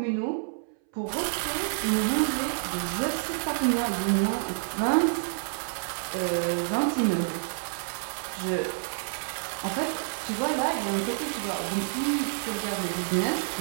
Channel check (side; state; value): left; silent; 58 dB below the other